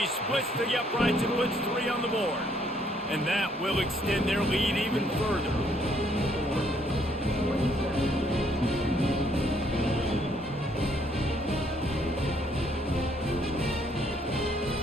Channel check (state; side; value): normal; both; correlation 0.67